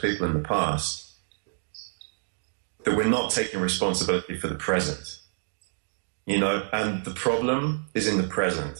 in the past that we're not taking responsibility for the present. And the problem is in the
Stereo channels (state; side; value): silent; left; digital silence